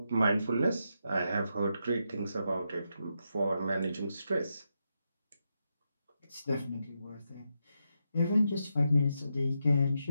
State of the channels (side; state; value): both; inverted; correlation -0.84